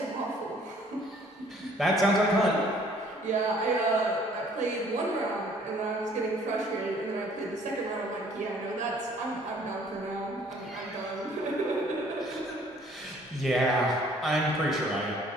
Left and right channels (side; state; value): both; normal; correlation 0.58